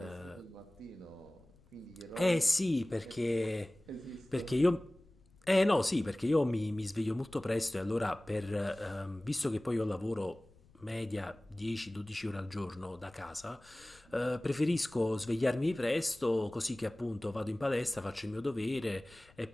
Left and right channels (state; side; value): noise; left; rumble, 28 dB below the sound